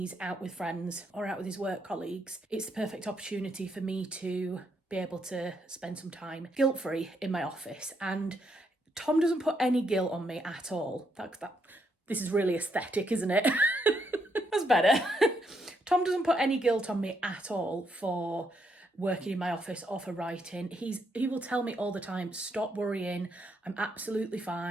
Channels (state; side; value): normal; both; correlation 0.76